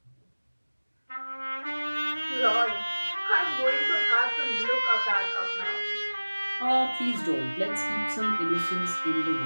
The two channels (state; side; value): inverted; both; correlation -1.00